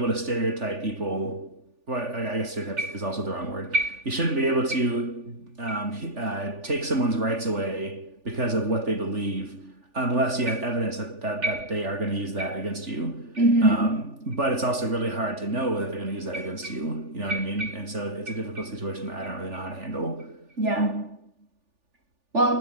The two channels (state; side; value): late; left; 3.4 ms